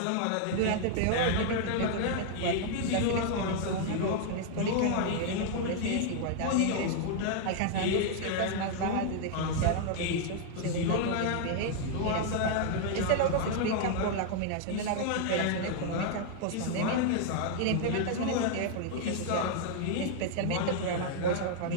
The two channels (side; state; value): both; different; correlation 0.00